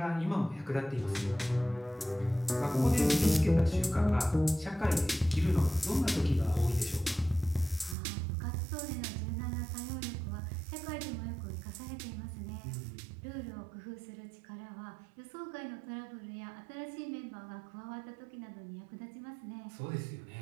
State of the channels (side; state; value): left; drops out; at 8.0 s